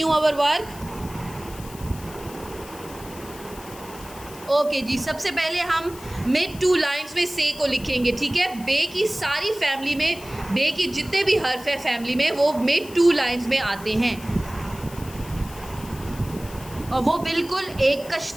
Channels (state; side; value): noise; left; hiss, 18 dB below the sound